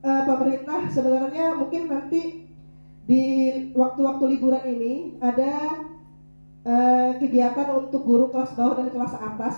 pemerintah sebenarnya mungkin nanti di waktu-waktu liburan ini ada kegiatan untuk guru kelas bawah dan kelas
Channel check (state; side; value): inverted; both; correlation -1.00